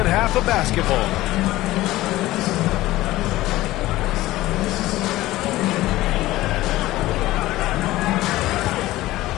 half of basketball.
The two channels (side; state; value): right; quieter; 16.9 dB